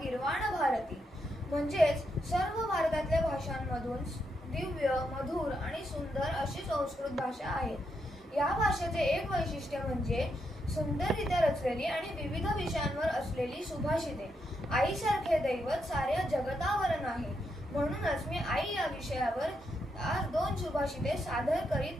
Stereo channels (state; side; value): normal; both; correlation 0.81